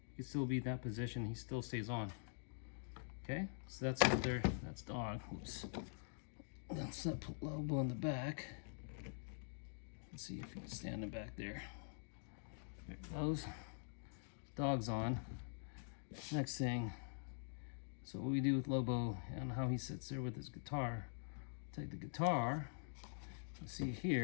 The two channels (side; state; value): right; silent; digital silence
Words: you can still be in that position. He still stays on. Okay, so that's up there. That's dog. Oops. Let's put Lobo in the back. Let's see if you can stand him back there. There it goes. Dog's on. Next thing. So what we do with Lobo and how he sits there with his guitar. Take the guitar. You see